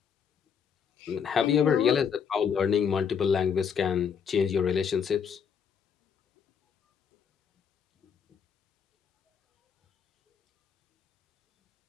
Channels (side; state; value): right; quieter; 7.1 dB